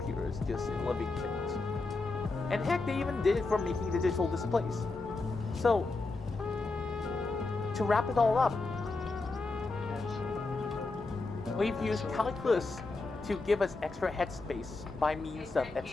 just in living things. And heck, they even did it for making digital displays. So, to wrap it all up, we've used calculus to give us extra headspace by means of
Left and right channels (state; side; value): quieter; right; 3.6 dB